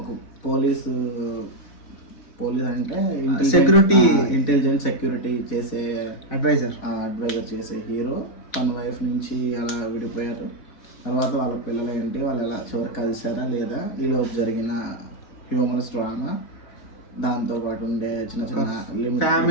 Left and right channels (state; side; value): late; right; 4.0 ms